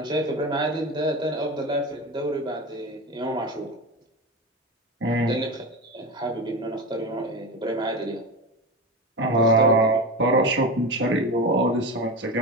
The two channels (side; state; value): both; normal; correlation 0.24